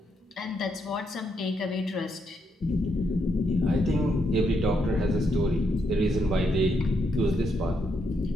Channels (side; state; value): both; normal; correlation 0.78